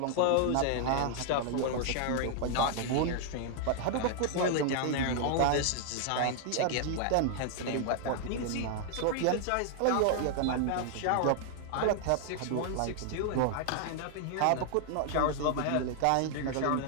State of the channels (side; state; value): both; different; correlation 0.00